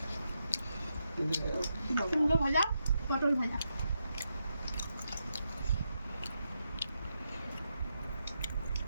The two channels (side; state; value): both; inverted; correlation -0.84